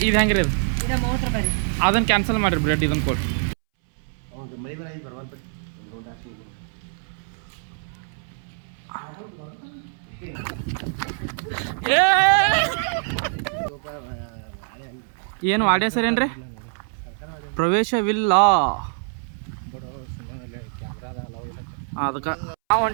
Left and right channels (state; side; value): silent; left; 62 dB below the other